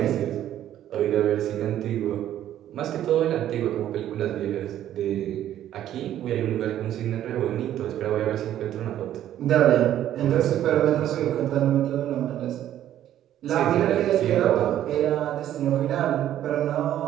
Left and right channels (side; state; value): left; quieter; 11.7 dB